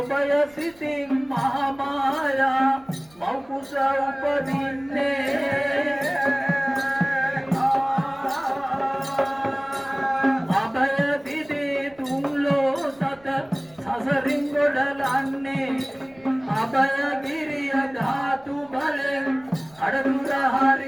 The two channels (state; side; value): noise; right; rumble, 29 dB below the sound